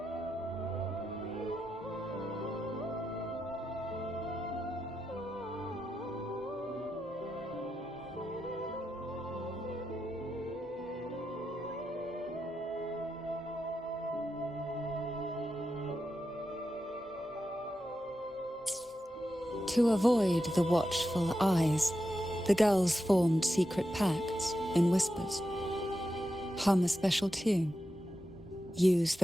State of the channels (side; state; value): both; normal; correlation 0.88